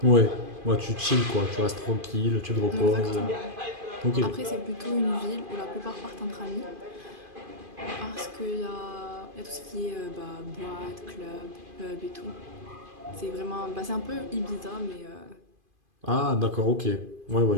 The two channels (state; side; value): late; left; 2.5 ms